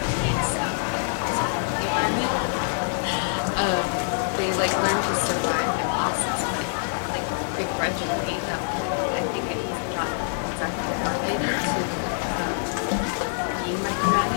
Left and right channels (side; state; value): right; silent; 62 dB below the other